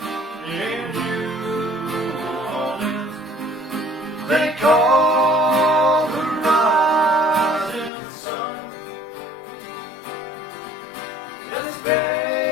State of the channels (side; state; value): right; drops out; at 7.9 s